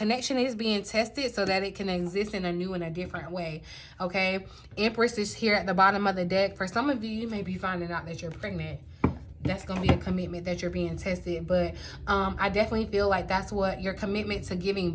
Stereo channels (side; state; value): both; identical; correlation 1.00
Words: is being tested so that it can exist in a new and a different way. Okay. Empress is here at the bottom of the deck. For some of you, you may be finding out that you're pregnant. That's going to be a commitment that you're being tested. But I definitely feel like that's what your commitment to giving